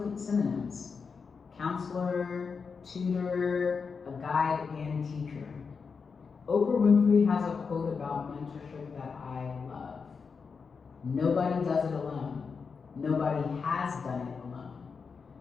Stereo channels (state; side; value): quieter; right; 5.4 dB